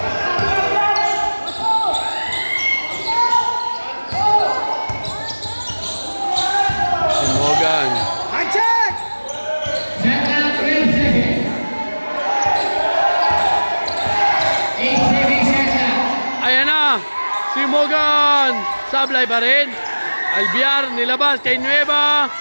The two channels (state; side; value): inverted; both; correlation -1.00